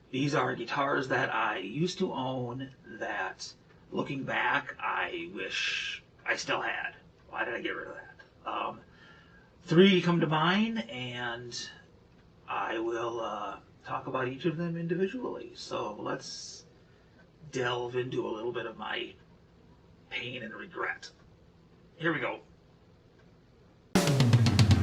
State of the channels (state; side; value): identical; both; correlation 1.00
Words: These are guitars that I used to own that, looking back, I wish I still had. Why did I get rid of that? Three come to mind, and I will talk about each of them individually. So let's delve into a little bit of my pain and regret. Here we go.